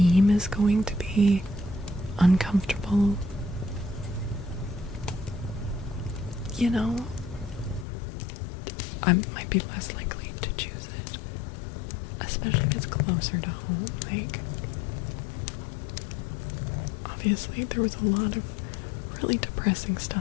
is going to be uncomfortable, you know, I might be less likely to choose it, especially if it's closer to home. Like, obviously there was a lot of really depressing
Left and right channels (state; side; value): drops out; right; at 7.9 s